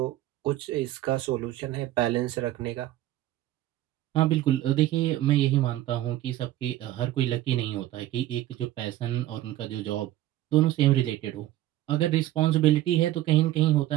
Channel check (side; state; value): left; quieter; 14.5 dB